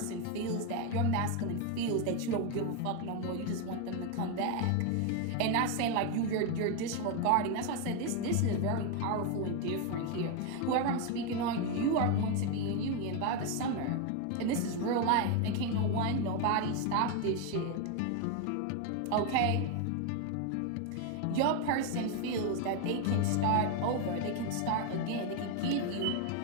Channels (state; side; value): different; both; correlation 0.02